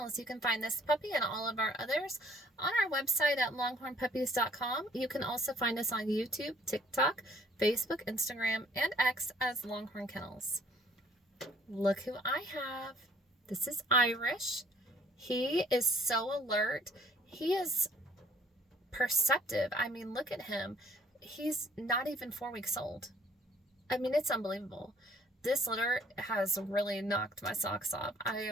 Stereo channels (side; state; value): both; normal; correlation 0.58